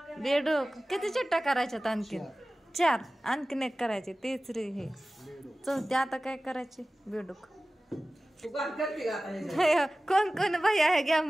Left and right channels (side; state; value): both; normal; correlation 0.97